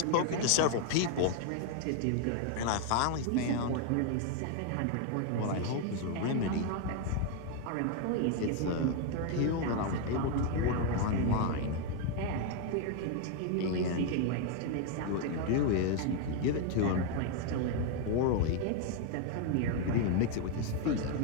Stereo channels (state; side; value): different; both; correlation 0.01